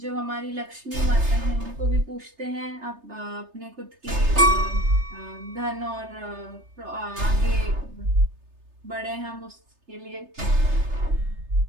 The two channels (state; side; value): late; left; 3.3 ms